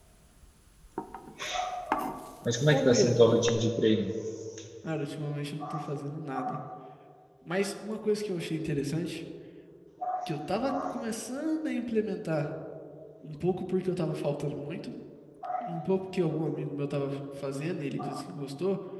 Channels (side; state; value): both; identical; correlation 1.00